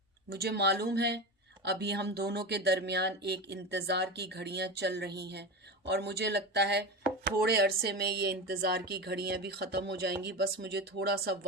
मुझे मालूम है अभी हम दोनों के दरमियान एक इंतज़ार की घड़ियां चल रही हैं, और मुझे लगता है थोड़े अरसे में ये इंतज़ार की घड़ियां भी ख़त्म हो जाएंगी। बस मुझे थोड़ा सा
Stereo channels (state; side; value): normal; both; correlation 0.23